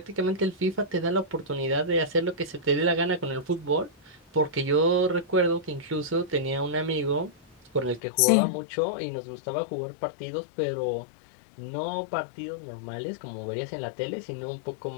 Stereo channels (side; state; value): right; drops out; at 8.0 s